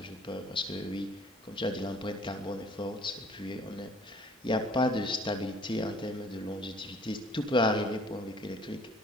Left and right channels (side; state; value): both; normal; correlation 0.54